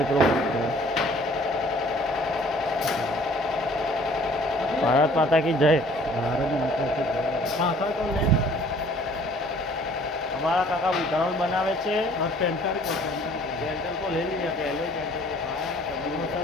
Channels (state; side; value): normal; both; correlation 0.55